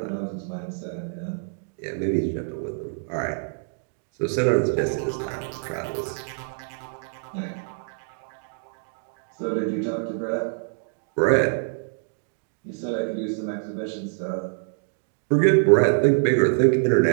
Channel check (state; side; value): silent; left; digital silence